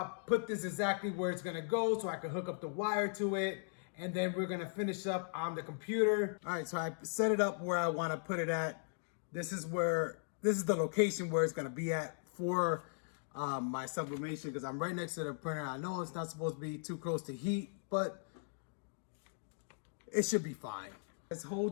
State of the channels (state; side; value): silent; right; digital silence